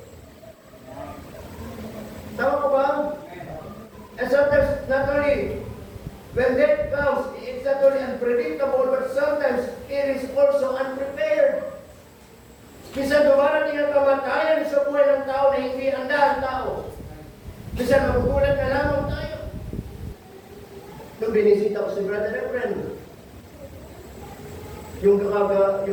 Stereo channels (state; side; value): identical; both; correlation 1.00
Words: Tama ko ba? And sometimes, not only, when death comes, it's not only unpredictable, but sometimes it is also unprepared. Minsan dumarating ang kamatayan sa buhay ng tao na hindi handa ang tao. Minsan magugulat na lamang tayo. Nung binisita ko si Brother Reverend,